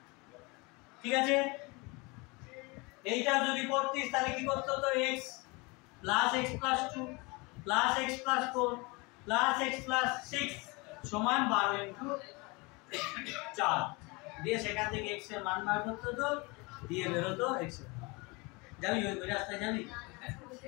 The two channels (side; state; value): right; quieter; 26.9 dB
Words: ঠিক আছে, এইটা যদি করতিস তাহলে কি করতে হতো, x plus x plus 2 plus x plus 4 plus x plus 6 সমান 12 ইনটু 4 দিয়ে সেখান থেকে x এর মান বার করতে হতো, দিয়ে বেরোতো x এর মান। যাবি ওই রাস্তায় যাবি?